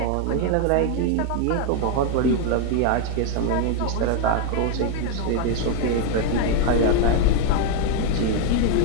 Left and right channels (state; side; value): different; both; correlation 0.01